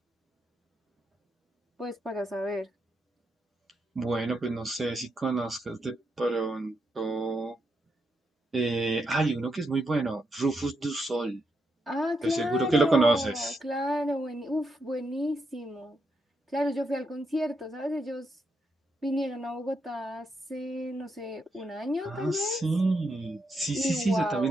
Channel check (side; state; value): both; normal; correlation 0.81